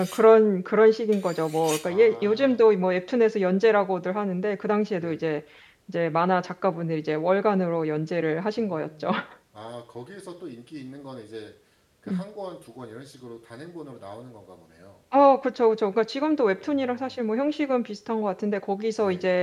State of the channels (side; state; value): both; identical; correlation 1.00